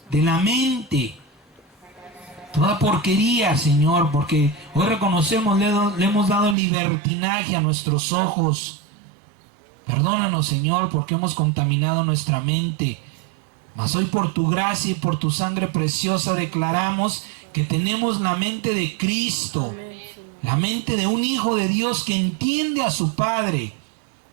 de la mente, toda porquería, Señor, porque hoy reconocemos, le hemos dado libertinaje a nuestros ojos. Perdónanos, Señor, porque hemos contaminado nuestra mente. Mas hoy por tu gracia y por tu sangre preciosa declaramos que tenemos la mente de Cristo, la mente de un hijo de Dios que entiende a su Padre,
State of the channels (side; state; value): left; drops out; at 6.6 s